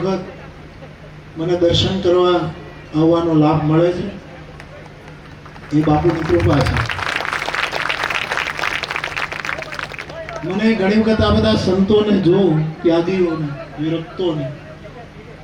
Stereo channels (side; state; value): both; identical; correlation 1.00